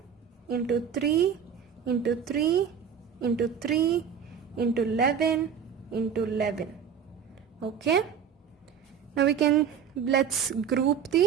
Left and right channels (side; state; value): left; quieter; 7.6 dB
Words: into 3 into 3 into 3 into 11 into 11. Okay. Now let's group